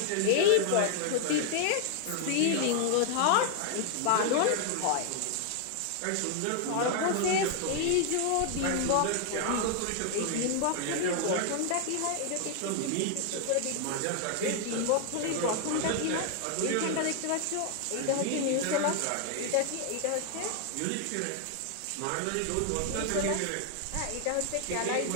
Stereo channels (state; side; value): different; both; correlation 0.00